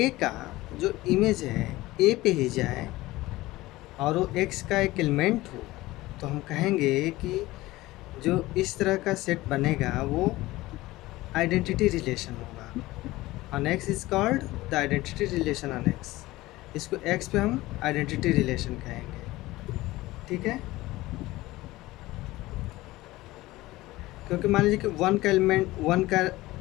का जो इमेज है ए पे ही जाए और वो एक्स का एक एलिमेंट हो, तो हम कहेंगे कि जो इस तरह का सेट बनेगा वो आइडेंटिटी रिलेशन होगा। On X is called the identity relation on x. इसको एक्स पे हम आइडेंटिटी रिलेशन कहेंगे। ठीक है, क्योंकि मान लीजिए कि वन का एलिमेंट, वन का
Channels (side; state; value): right; quieter; 18.5 dB